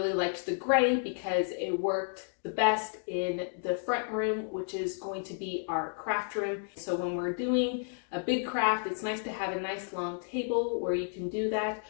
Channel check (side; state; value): right; silent; digital silence